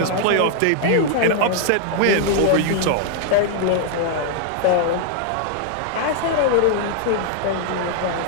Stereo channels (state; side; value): different; both; correlation -0.01